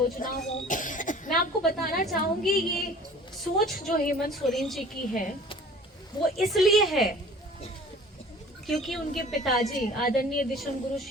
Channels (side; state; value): both; normal; correlation 0.46